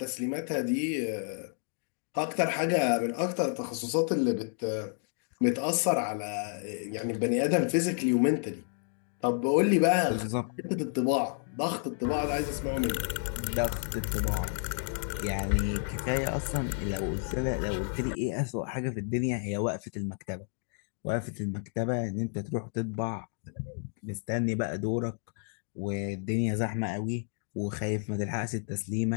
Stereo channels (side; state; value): right; silent; 57 dB below the other